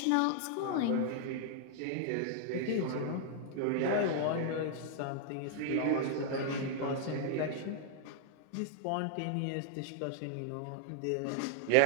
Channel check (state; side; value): different; both; correlation -0.01